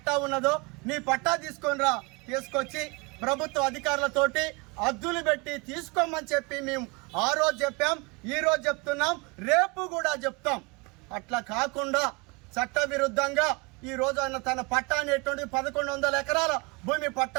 ఉన్నదో నీ పట్టా తీసుకొచ్చి ప్రభుత్వ అధికారులతోటి అద్దులు పెట్టి తీసుకోమని చెప్పి మేము ఆ రోజు చెప్పాం, ఈ రోజు చెప్తున్నాం, రేపు కూడా చెప్తాం. అట్లా కాకుండా చట్ట విరుద్ధంగా ఈ రోజు ఆయన తన పట్టా అనేటువంటి 1,100 ఎకరాల భూమి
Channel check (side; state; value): left; quieter; 28.2 dB